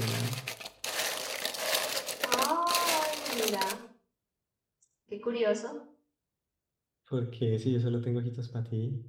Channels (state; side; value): identical; both; correlation 1.00